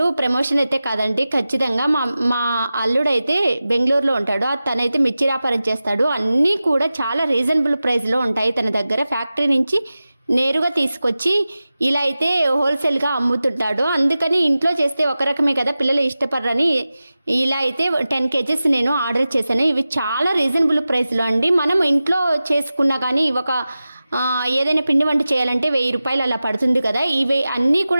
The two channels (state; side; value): inverted; both; correlation -0.95